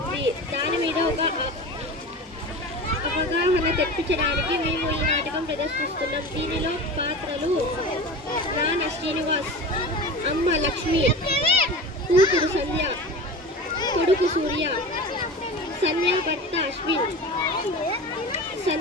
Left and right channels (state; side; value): normal; both; correlation 0.32